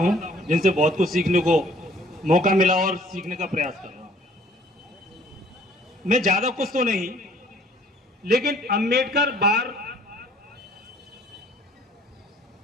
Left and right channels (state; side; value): normal; both; correlation 0.57